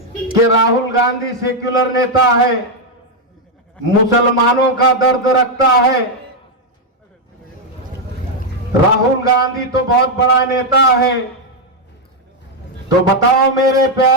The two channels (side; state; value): both; normal; correlation 0.01